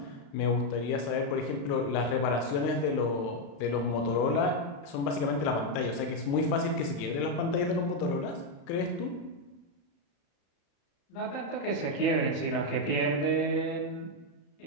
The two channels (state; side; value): late; right; 36 ms